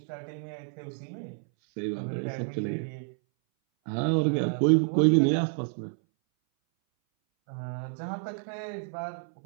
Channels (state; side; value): silent; left; 59 dB below the other